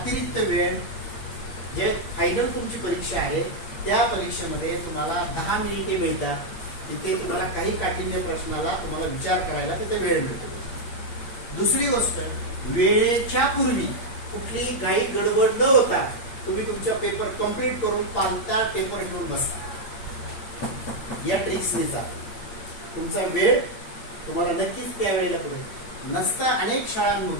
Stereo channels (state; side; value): late; right; 8.6 ms